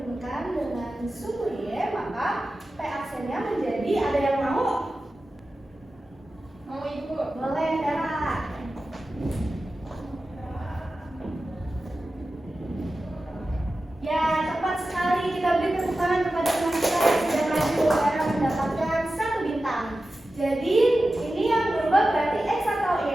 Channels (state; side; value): normal; both; correlation 0.94